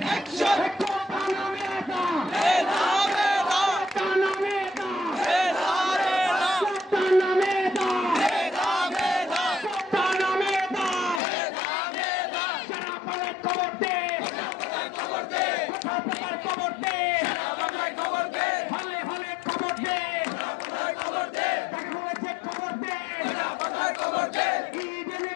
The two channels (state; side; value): drops out; right; at 11.2 s